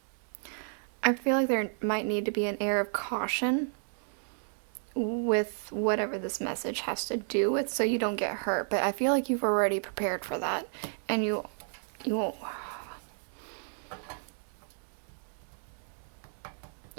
I feel like there might need to be an air of caution with whatever this message has to do with, so you don't get hurt. But I feel like you've already prepared for that, and you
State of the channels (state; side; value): silent; left; digital silence